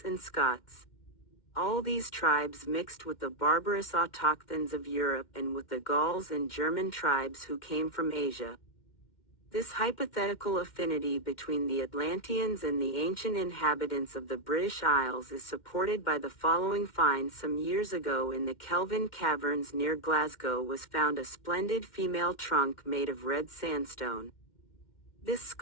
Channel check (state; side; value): late; right; 2.1 ms